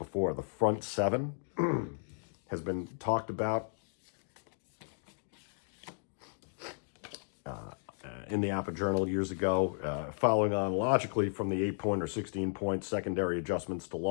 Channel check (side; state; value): right; silent; digital silence